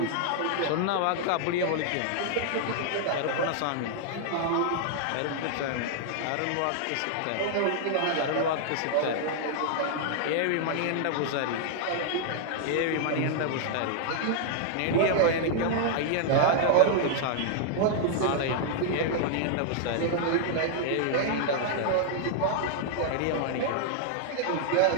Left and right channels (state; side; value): different; both; correlation -0.01